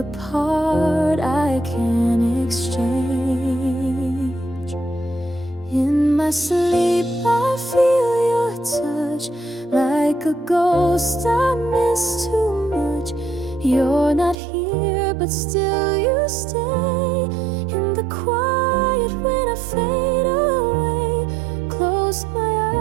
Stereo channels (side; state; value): left; drops out; at 14.4 s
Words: part I can't exchange. In my sleep I feel your touch, like a ghost I miss too much. You're not here but still you stay. In the quiet when I fade away, close my